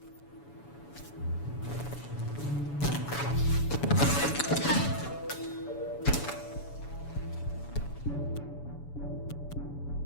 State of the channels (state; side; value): late; right; 7.0 ms